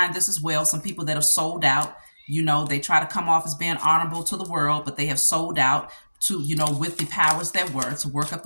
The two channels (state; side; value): inverted; both; correlation -1.00